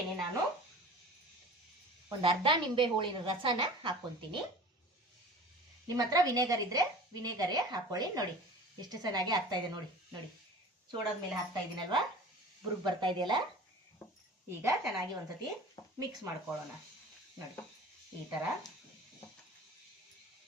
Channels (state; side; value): normal; both; correlation 0.40